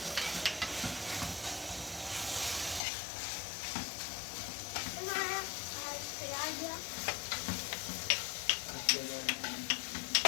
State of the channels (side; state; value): right; drops out; at 2.8 s